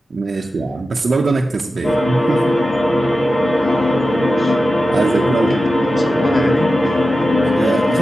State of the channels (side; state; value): both; normal; correlation 0.93